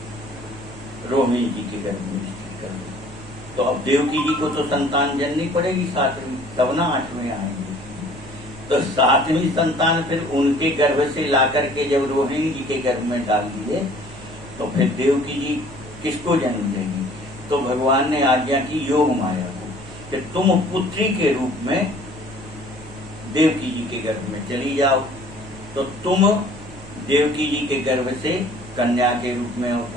रोहिणी जी के गर्भ में स्थित कर दो। तो अब देवकी जी को तो संतान जननी पड़ेगी सातवीं, तब ना आठवें आएंगे। तो सातवीं संतान फिर उनके गर्भ से लाकर के जब रोहिणी जी के गर्भ में डाल दिए तो फिर देवकी जी किसको जन्म देंगी? तो भगवान ने आज्ञा की योग माया को कि तुम पुत्री के रूप में देवकी जी के गर्भ में चली जाओ। तो तुम देवकी जी के गर्भ से कन्या के रूप में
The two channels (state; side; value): noise; right; hum, 17 dB below the sound